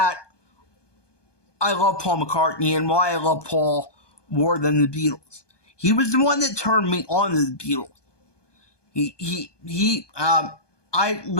I love Paul McCartney and why I love Paul more than the Beatles. He was the one that turned me on to the Beatles. I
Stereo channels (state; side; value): late; right; 1.2 ms